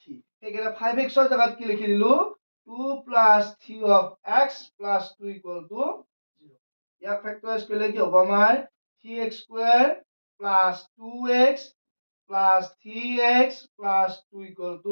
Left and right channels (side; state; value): both; inverted; correlation -1.00